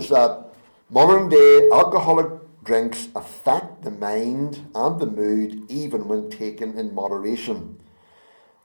that modern day alcoholic drinks affect the mind and the mood even when taken in moderation.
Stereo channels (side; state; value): both; inverted; correlation -1.00